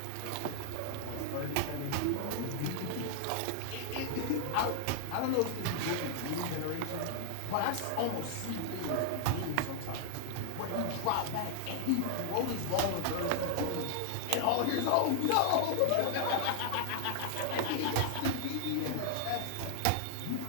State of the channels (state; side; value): different; both; correlation 0.00